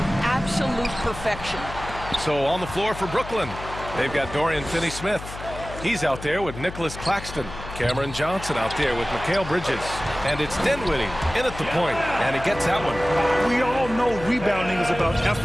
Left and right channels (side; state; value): left; noise; hum, 11 dB below the sound